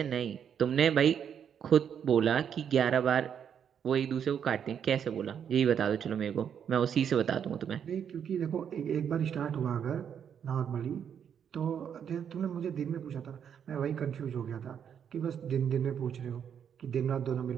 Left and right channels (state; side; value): quieter; left; 8.2 dB